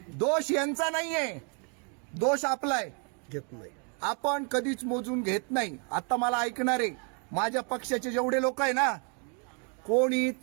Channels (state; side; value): quieter; left; 38.6 dB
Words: दोष यांचा नाहीये, दोष आपलाय. घेत नाही. आपण कधीच मोजून घेत नाही. आता मला ऐकणारे माझ्या पक्षाचे जेवढे लोक आहे ना, कोणीच